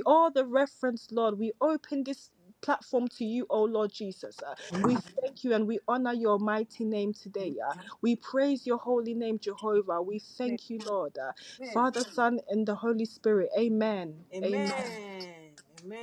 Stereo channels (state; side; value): identical; both; correlation 1.00